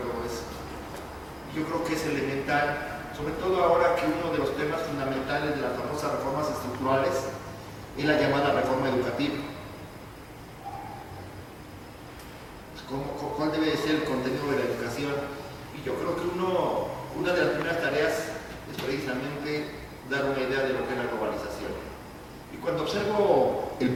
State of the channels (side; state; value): both; identical; correlation 1.00